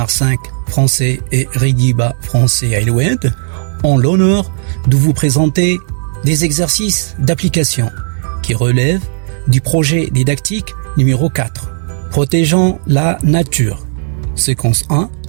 5 français et Rigiba français Aïloued ont l'honneur de vous présenter des exercices d'application qui relèvent du projet didactique numéro 4, protégeant la nature. Séquence 1.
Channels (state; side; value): silent; left; digital silence